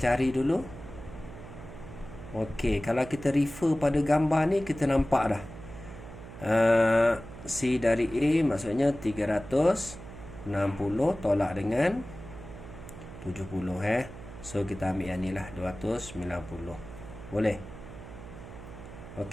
cari dulu. Okey, kalau kita refer pada gambar ni kita nampak dah. C dari A maksudnya 360 tolak dengan 70 So kita ambil yang ni lah 290. Boleh?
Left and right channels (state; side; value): noise; right; hum, 14 dB below the sound